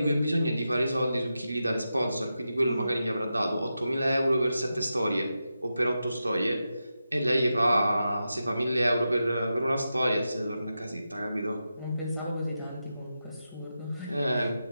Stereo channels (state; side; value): inverted; both; correlation -0.89